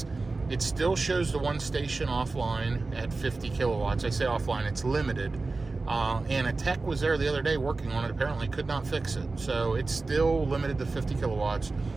It still shows the one station offline at 50 kilowatts. I say offline, it's limited. And a tech was there the other day working on it, apparently could not fix it. So it's still limited to 50 kilowatts.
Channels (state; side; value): quieter; left; 3.6 dB